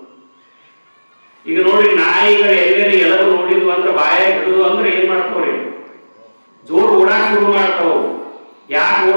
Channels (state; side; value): inverted; both; correlation -1.00